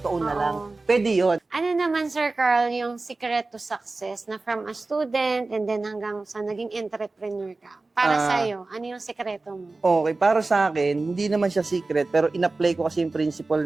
to own na lang? Pwede yun. Ano naman, Sir Carl, yung secret to success na from a student and then hanggang sa naging entrepreneur ka? Para sa'yo, ano yung sekreto mo? Okay, para sa akin, hindi naman siya secret, pero in-apply ko kasi yung principle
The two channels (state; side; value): quieter; left; 3.4 dB